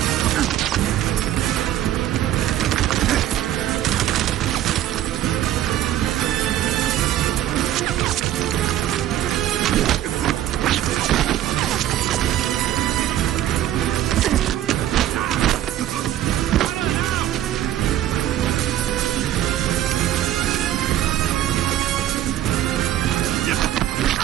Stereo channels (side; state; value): left; quieter; 12.5 dB